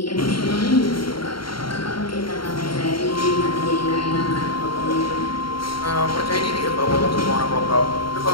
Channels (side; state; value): right; late; 0.73 ms